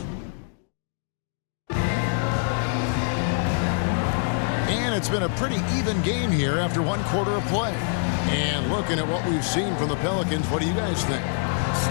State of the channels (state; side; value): silent; right; 61 dB below the other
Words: And it's been a pretty even game here after 1 quarter of play. And looking at what we've seen from the Pelicans, what do you guys think?